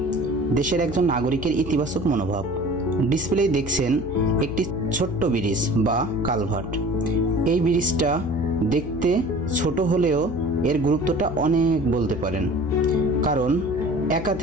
দেশের একজন নাগরিকের ইতিবাচক মনোভাব। ডিসপ্লেই দেখছেন একটি ছোট্ট ব্রিজ বা কালভার্ট। এই ব্রিজটা দেখতে ছোট হলেও এর গুরুত্বটা অনেক বলতে পারেন, কারণ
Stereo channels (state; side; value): noise; left; hum, 11 dB below the sound